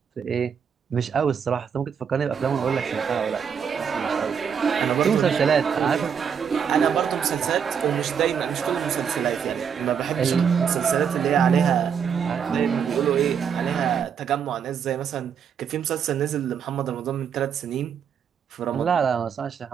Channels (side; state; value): left; quieter; 7.3 dB